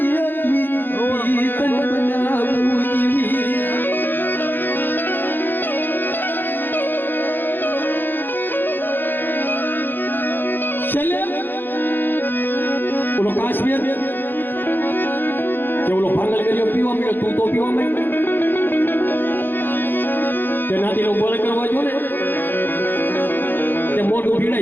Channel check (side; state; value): right; late; 0.095 ms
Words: તન બનાવું જીવી ચલે ઓલો કાશ્મીર કે ઓલો ભાંગલ ગયો પીવા મળ્યો તું તો પીવા મળ્યો તે નાથી નો બોલ કરવા જો ને તે મોઢું